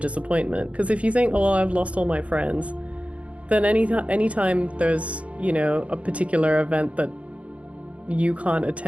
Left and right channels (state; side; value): late; left; 0.064 ms